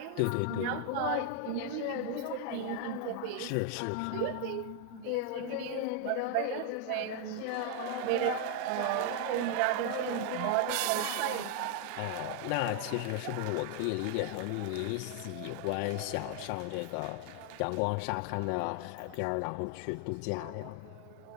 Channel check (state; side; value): different; both; correlation 0.00